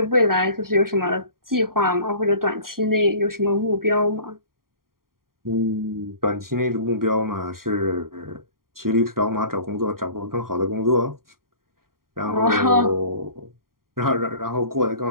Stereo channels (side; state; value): left; late; 0.92 ms